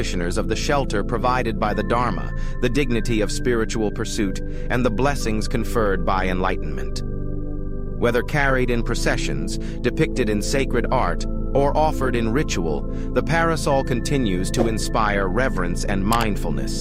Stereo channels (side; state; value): both; identical; correlation 1.00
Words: of the shelter provided by the Dharma, the dignity of spiritual pursuit, and the blessings conferred by enlightenment. Whether carried in processions, depicted in sacred art, or offered in ritual, the parasol continues to inspire reverence and